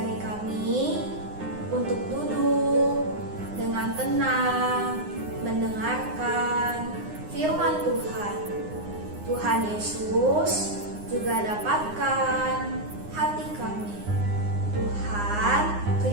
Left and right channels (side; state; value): left; late; 9.7 ms